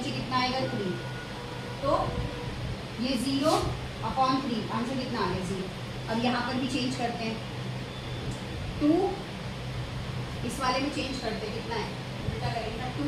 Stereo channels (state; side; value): identical; both; correlation 1.00